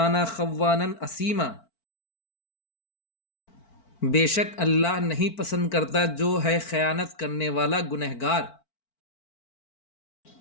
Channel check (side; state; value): right; late; 4.5 ms